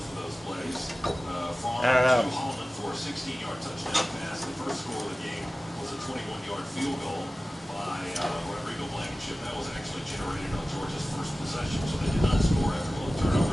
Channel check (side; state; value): both; normal; correlation 0.96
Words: of those plays. Farm to Holland for a 16-yard touchdown pass. The first score of the game was a 21-yard field goal by Rodrigo Blankenship. That was actually generated on Georgia's first possession, so they did not score after both